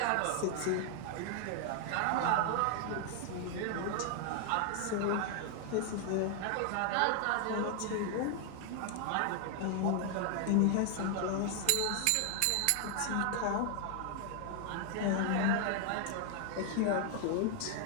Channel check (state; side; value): different; both; correlation 0.00